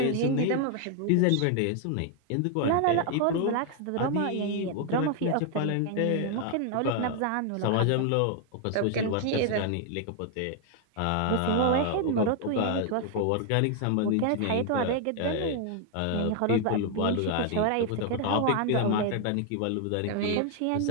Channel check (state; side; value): different; both; correlation 0.00